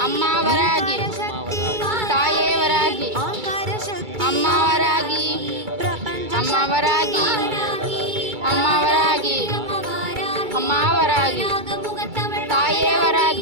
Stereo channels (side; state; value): left; late; 2.3 ms